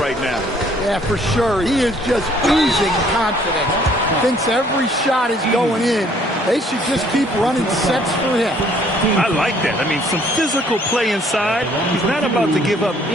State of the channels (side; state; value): both; normal; correlation 0.61